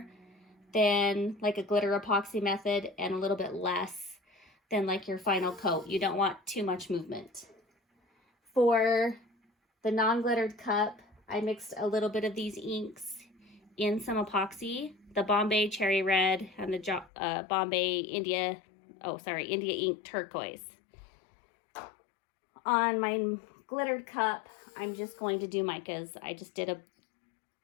than like a glitter epoxy method and a little bit less than like your final coat. You don't want too much movement. For the non-glittered cup, I mixed a little bit of these inks in some epoxy, the Bombay Cherry Red and the Bombay India Ink Turquoise. On my glittered cup, I'm just going to do micas. I just did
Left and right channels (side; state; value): right; drops out; at 17.1 s